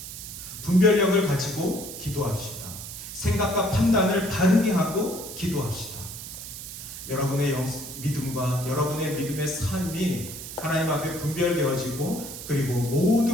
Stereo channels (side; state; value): right; noise; hiss, 10 dB below the sound